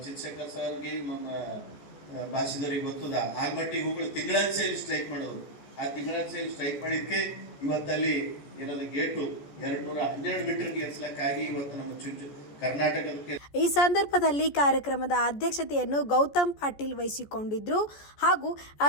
ಚಂದ್ರಶೇಖರ್ ಸರ್ಗೆ ನಮ್ಮ ಭಾಷಿದವ್ರಿಗೆ ಗೊತ್ತದ, ಆಲ್ಮಟ್ಟಿಗೆ ಹೋಗಿ ತಿಂಗಳಾನ್ಸೆಯಲ್ಲಿ ಸ್ಟ್ರೈಕ್ ಮಾಡೋದು. ಆ ತಿಂಗಳಾನ್ಸೆಯಲ್ಲಿ ಸ್ಟ್ರೈಕ್ ಮಾಡಿದ್ಕೆ ಇವತ್ತಲ್ಲಿ ಏನದ ಗೇಟು 212 ಮೀಟರ್ಗೆ ಏರ್ಸ್ಲಕ್ಕಾಗಿ ಇವತ್ತು ನಮ್ಮ ಕರ್ನಾಟಕಕ್ಕೆ. ಈ ಸಂದರ್ಭದಲ್ಲಿ ಕಾರ್ಯಕ್ರಮದ ಅಧ್ಯಕ್ಷತೆಯನ್ನು ಗೌತಮ್ ಪಾಟೀಲ್ ವಹಿಸಿಕೊಂಡಿದ್ರು. ಹಾಗೂ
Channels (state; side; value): late; right; 14 ms